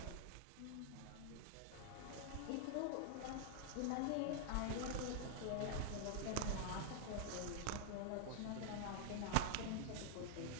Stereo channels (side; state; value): both; different; correlation 0.00